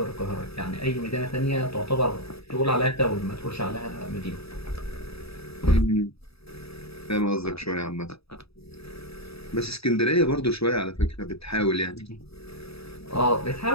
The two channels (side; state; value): right; late; 0.77 ms